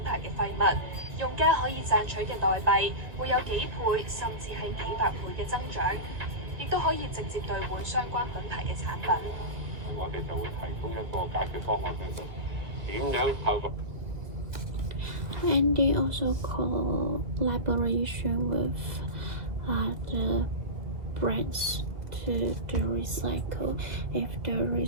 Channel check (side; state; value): left; late; 2.3 ms